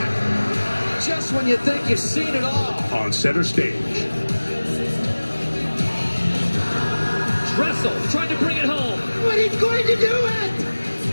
Just when you think you've seen it all. On center stage. Dressel trying to bring it home. But he's going to do it!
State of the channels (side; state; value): both; inverted; correlation -1.00